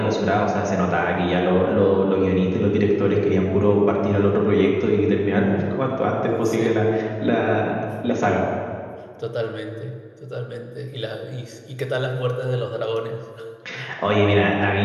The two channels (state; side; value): identical; both; correlation 1.00